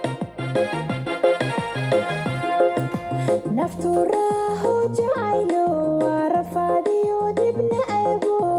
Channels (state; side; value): identical; both; correlation 1.00